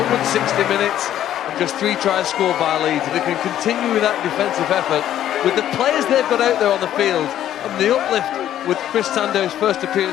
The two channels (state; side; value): quieter; right; 11.5 dB